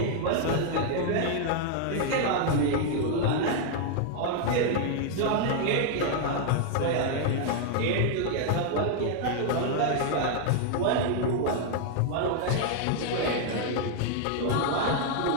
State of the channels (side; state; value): both; different; correlation 0.00